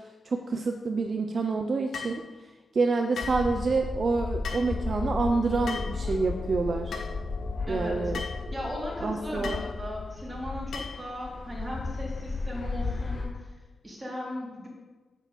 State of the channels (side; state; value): both; normal; correlation 0.88